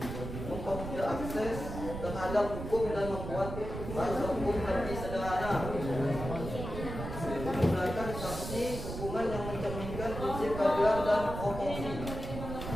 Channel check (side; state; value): right; noise; rumble, 7 dB below the sound